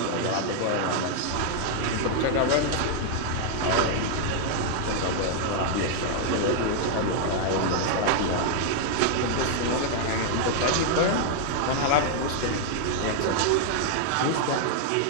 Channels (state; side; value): different; both; correlation 0.00